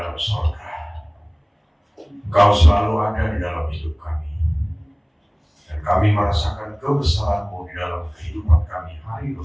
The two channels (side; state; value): both; identical; correlation 1.00